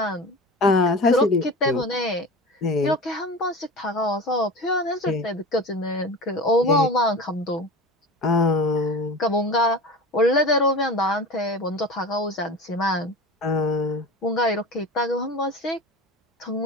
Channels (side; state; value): both; normal; correlation 0.32